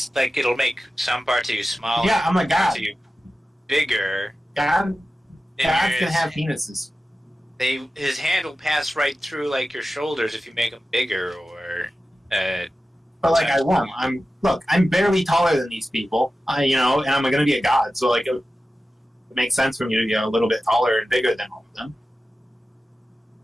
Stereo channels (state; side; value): normal; both; correlation 0.94